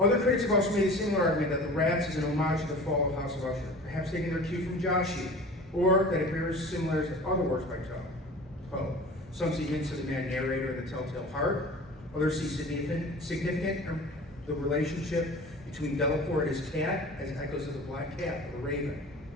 critics have also made a similar argument that The Rats is an homage to the fall of House of Usher, perhaps taking their cue from Joshi, or that it bears similarities to other works by Poe. Some see hints of the mad narrator of The Telltale Heart. Others see significant the relationship between Delaporte and his cat as echoes of the black cat of the raven.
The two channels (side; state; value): both; normal; correlation 0.40